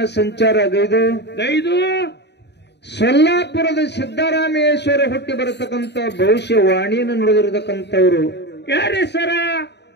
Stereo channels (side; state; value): right; late; 0.50 ms